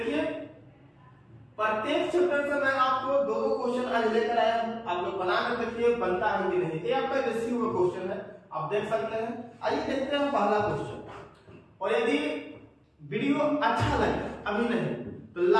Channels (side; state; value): both; identical; correlation 1.00